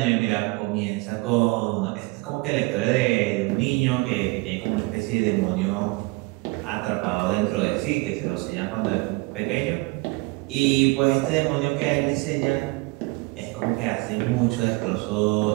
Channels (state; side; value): quieter; left; 25.2 dB